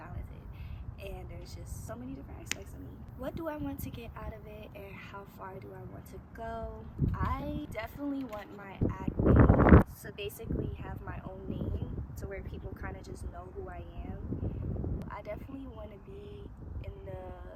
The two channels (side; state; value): both; identical; correlation 1.00